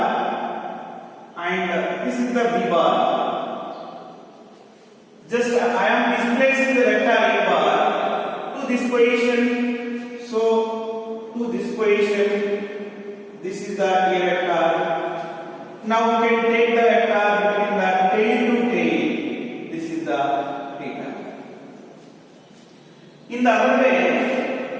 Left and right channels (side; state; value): both; identical; correlation 1.00